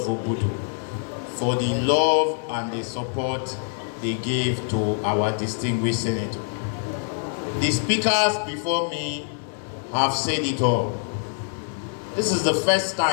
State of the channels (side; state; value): right; silent; digital silence